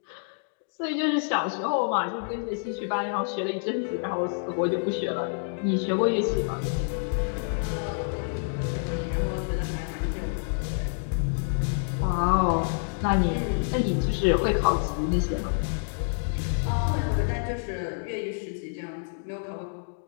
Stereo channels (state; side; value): silent; right; digital silence